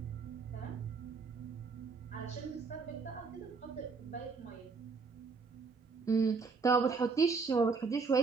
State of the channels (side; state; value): left; quieter; 4.7 dB